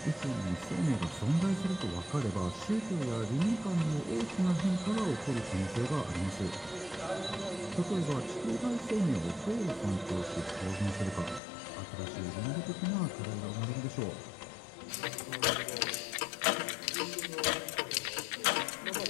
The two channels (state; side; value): drops out; right; at 11.4 s